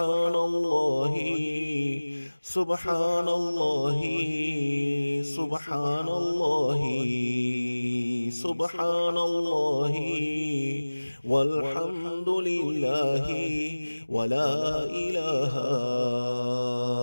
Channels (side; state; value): both; inverted; correlation -1.00